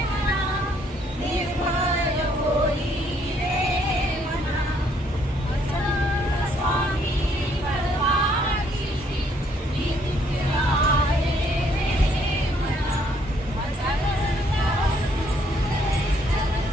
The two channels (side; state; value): both; normal; correlation 0.67